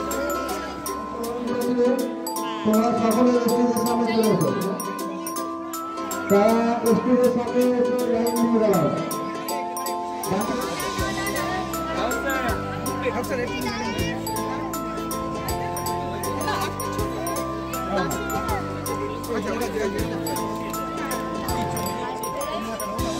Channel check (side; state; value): both; identical; correlation 1.00